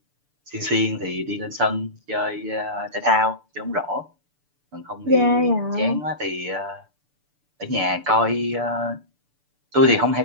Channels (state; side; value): late; left; 6.8 ms